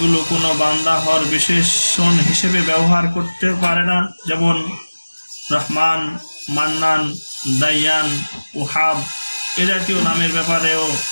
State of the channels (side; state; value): both; inverted; correlation -1.00